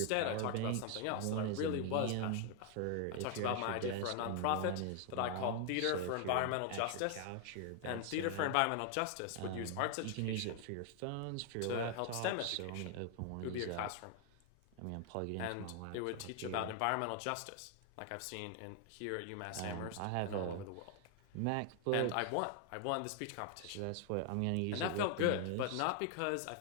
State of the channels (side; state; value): both; different; correlation 0.00